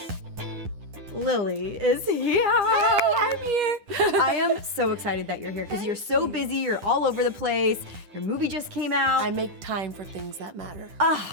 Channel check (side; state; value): left; late; 9.9 ms